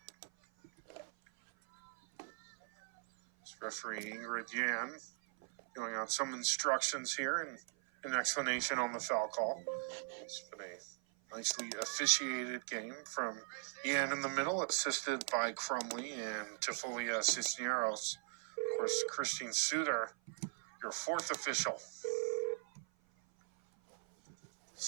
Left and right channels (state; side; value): silent; left; 51 dB below the other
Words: This referee Ingrid Yan going out some instructions here and an explanation on the foul call. It's been a nicely officiated game from Yan in the middle, assisted by Crumley and Tifolia Cisneros. Of course, Christine Suter, your fourth official.